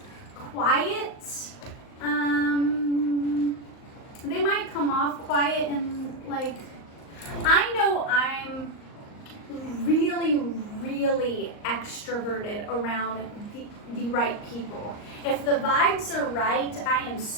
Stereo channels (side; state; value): right; late; 38 ms